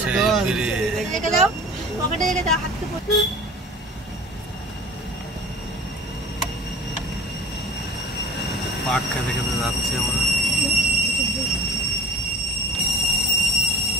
সেই ব্রিজ। পাক খেতে খেতে যাচ্ছি আমরা।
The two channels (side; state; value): both; normal; correlation 0.41